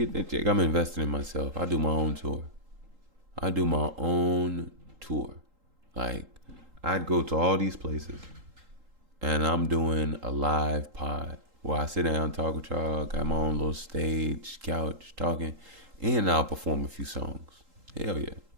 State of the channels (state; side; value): late; left; 3.8 ms